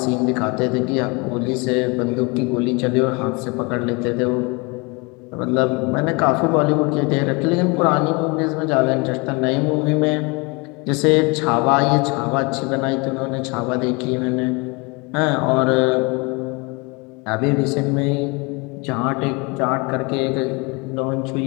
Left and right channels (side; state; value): right; quieter; 28.5 dB